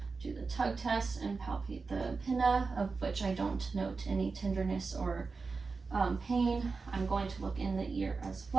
do the tug test, and palpate the pinna, of which I don't note any tenderness or pain. I'm going to look in the ear as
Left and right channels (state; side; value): quieter; left; 4.4 dB